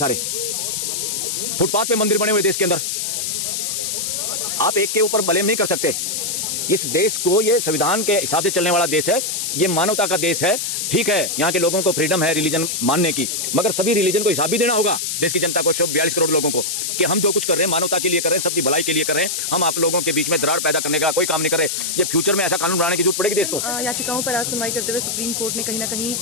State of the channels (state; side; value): noise; left; hiss, 2 dB below the sound